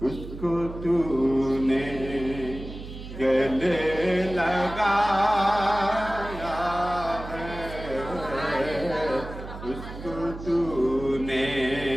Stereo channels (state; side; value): noise; right; hum, 11 dB below the sound